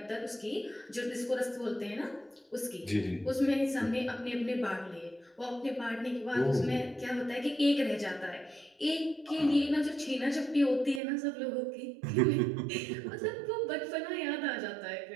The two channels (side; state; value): left; drops out; at 11.0 s